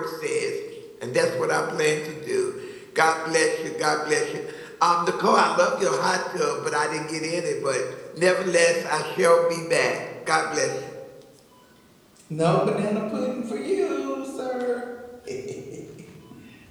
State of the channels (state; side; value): identical; both; correlation 1.00